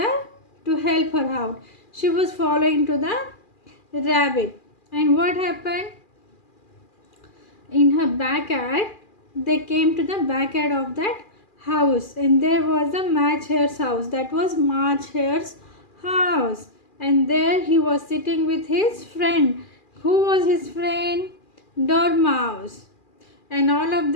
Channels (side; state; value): right; late; 2.4 ms